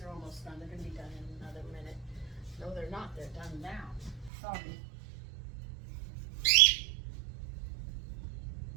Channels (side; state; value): left; drops out; at 4.3 s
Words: are almost done. They're going to be done in another minute. No, they're not. They're done now. Sorry.